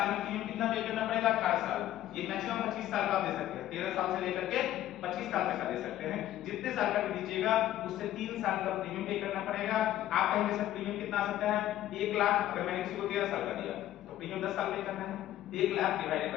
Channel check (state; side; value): quieter; right; 13.3 dB